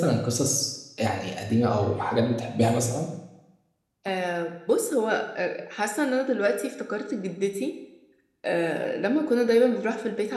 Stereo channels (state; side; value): identical; both; correlation 1.00